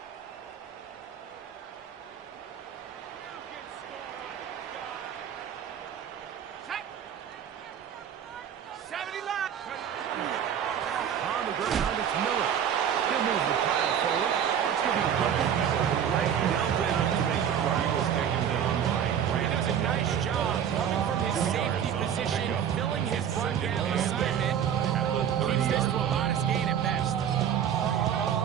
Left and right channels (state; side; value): quieter; left; 8.9 dB